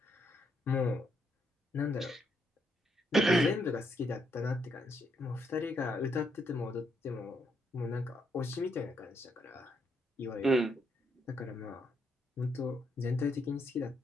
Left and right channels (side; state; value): both; normal; correlation 0.76